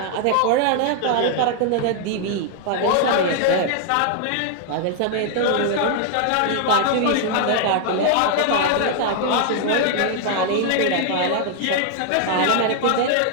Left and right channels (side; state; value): both; different; correlation 0.00